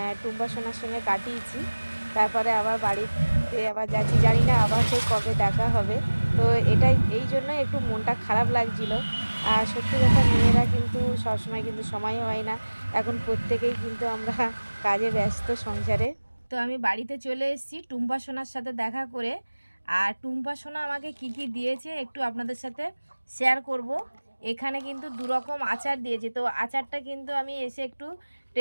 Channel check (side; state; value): both; inverted; correlation -1.00